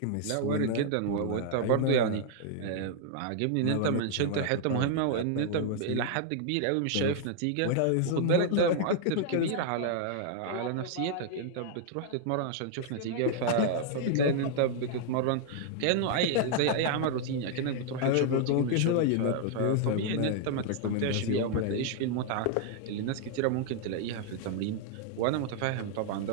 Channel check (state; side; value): different; both; correlation -0.01